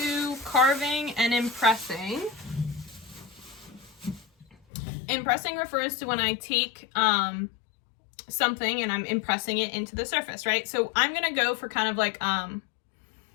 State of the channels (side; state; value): right; drops out; at 4.5 s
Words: carving and impressing, impressing refers to when I take something and I'm impressing it into the surface, right? So I'm gonna go for kind of like